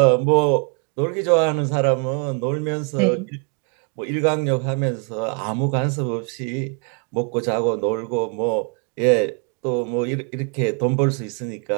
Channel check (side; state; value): left; quieter; 39.6 dB